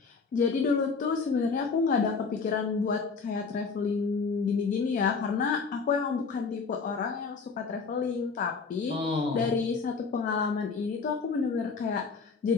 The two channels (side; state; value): right; quieter; 4.9 dB